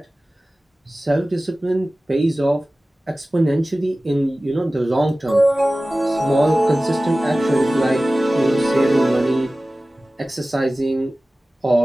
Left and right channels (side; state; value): both; normal; correlation 0.97